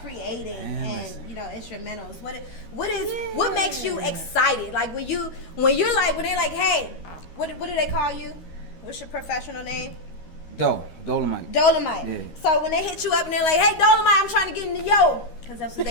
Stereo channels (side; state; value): right; late; 13 ms